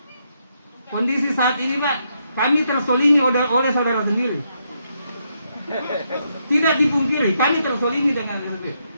Kondisi saat ini, Pak, kami tersolimi oleh saudara sendiri. Tidak dipungkiri, kami tersolimi dengan itu.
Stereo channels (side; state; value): both; inverted; correlation -0.78